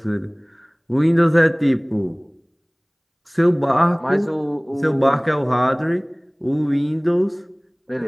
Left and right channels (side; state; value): both; identical; correlation 1.00